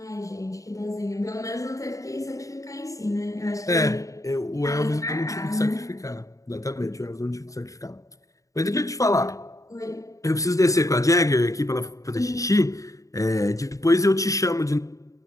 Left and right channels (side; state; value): right; late; 0.16 ms